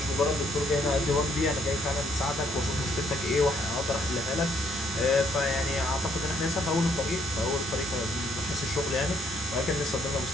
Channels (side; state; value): both; normal; correlation 0.68